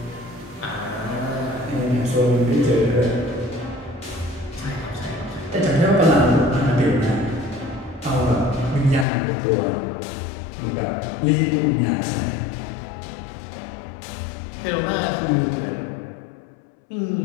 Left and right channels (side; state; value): right; drops out; at 9.1 s